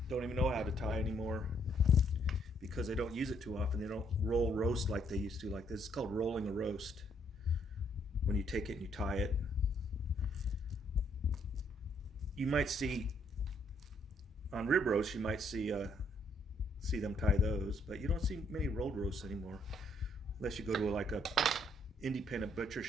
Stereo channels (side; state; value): both; normal; correlation 0.70